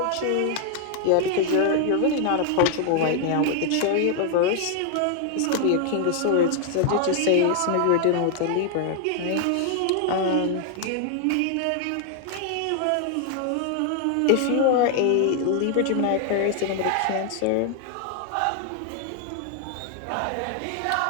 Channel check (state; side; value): different; both; correlation 0.00